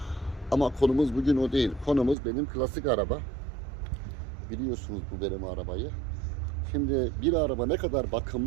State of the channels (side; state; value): left; drops out; at 2.1 s